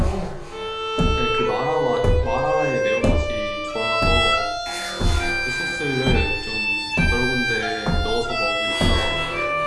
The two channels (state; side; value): identical; both; correlation 1.00